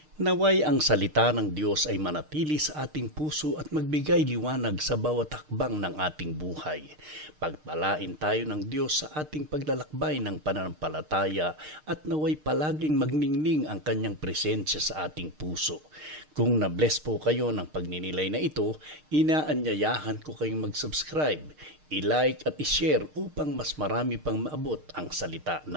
Naway ang salita ng Diyos ay manatili sa ating puso at magbigay liwanag sa bawat hakbang ng ating buhay. Pagpalain tayo ng Diyos sa ating paglalakbay ng pananampalataya at naway palaging magningning ang kanyang presensya sa ating puso. Kung na-bless po kayo ng pagninilay na ito, inaanyayahan ko kayong mag-subscribe, i-like at i-share upang mas marami pang maabot ang salita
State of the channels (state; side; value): late; left; 6.5 ms